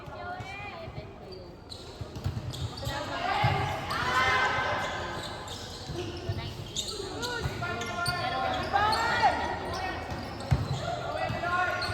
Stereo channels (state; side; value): identical; both; correlation 1.00